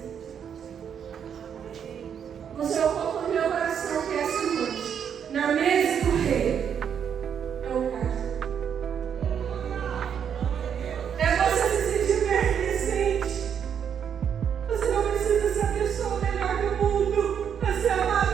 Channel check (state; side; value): quieter; left; 8.0 dB